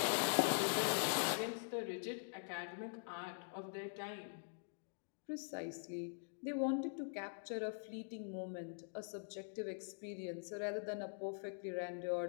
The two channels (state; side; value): silent; right; digital silence